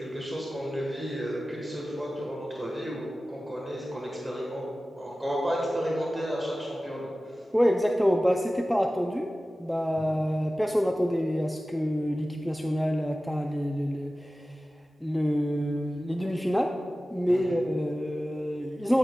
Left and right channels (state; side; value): normal; both; correlation 0.96